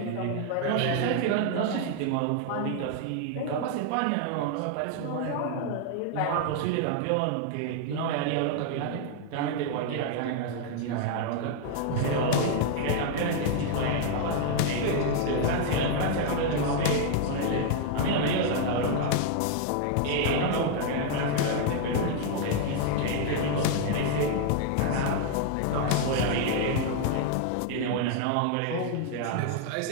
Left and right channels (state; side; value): different; both; correlation 0.00